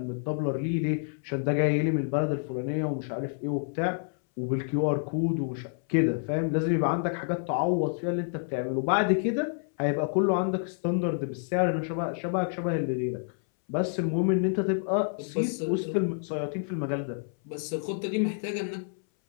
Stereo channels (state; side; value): silent; right; 59 dB below the other